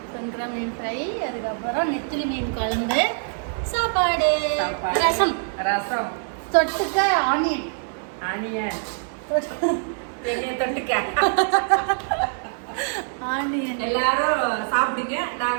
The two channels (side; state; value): left; silent; digital silence